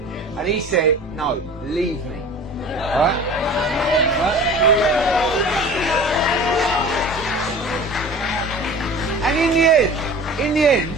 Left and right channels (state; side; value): normal; both; correlation 0.40